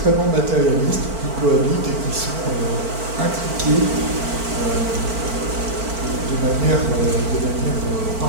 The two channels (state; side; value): late; left; 4.5 ms